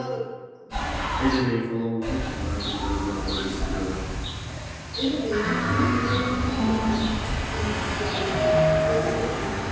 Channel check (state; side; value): identical; both; correlation 1.00